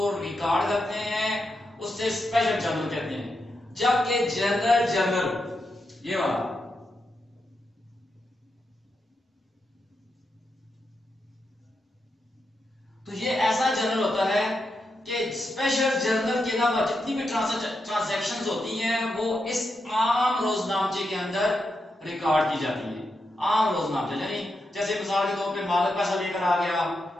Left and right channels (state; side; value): normal; both; correlation 0.86